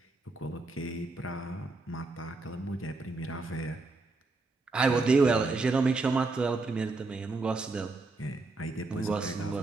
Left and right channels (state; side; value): quieter; left; 3.5 dB